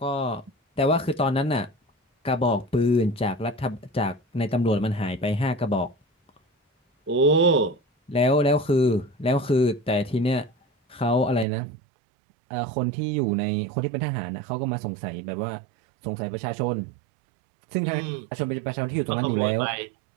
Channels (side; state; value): left; drops out; at 11.5 s